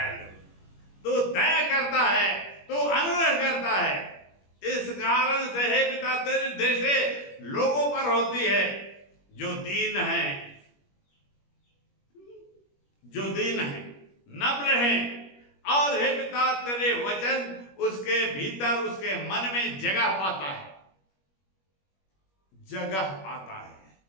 तू दया करता है, तू अनुग्रह करता है, इस कारण से हे पिता तेरी दृष्टि लोगों पर होती है जो दीन है, जो दीन है, नम्र है। और हे पिता, तेरे वचन उसके भीतर, उसके मन में जगह पाता है, जगह पाता है।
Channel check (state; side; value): late; right; 21 ms